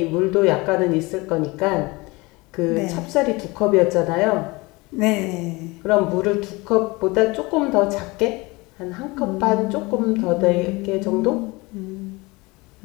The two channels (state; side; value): quieter; right; 24.0 dB